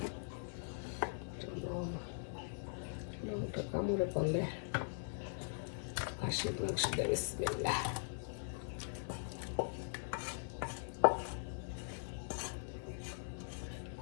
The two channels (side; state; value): right; silent; 50 dB below the other